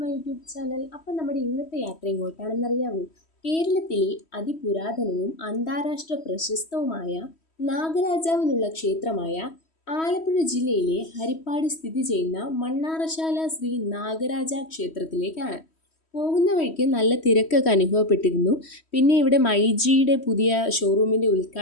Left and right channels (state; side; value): late; right; 3.1 ms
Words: YouTube channel. അപ്പം നമ്മുടെ ഇന്നത്തെ യാത്ര എങ്ങോട്ടാണെന്നറിയാമോ? കേരളത്തിലെ അതിപുരാതനവും അന്താരാഷ്ട്ര പ്രശസ്തവുമായ നാഗരാജാവിനുള്ള ക്ഷേത്രമായ ആലപ്പുഴ ജില്ലയിലെ ഹരിപ്പാട് സ്ഥിതി ചെയ്യുന്ന മണ്ണാറശാല ശ്രീ നാഗരാജ ക്ഷേത്രത്തിലേക്കാണ്. പോകുന്ന വഴിക്ക് നല്ല തിരക്കൊക്കെ അനുഭവപ്പെട്ടിരുന്നു. പിന്നെ ഇവിടെ മൈജിയുടെ പുതിയ ഷോറൂമിൻ്റെ